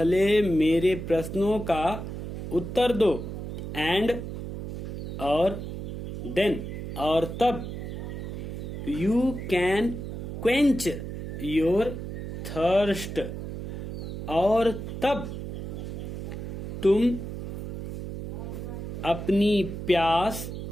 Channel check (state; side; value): noise; right; hum, 7 dB below the sound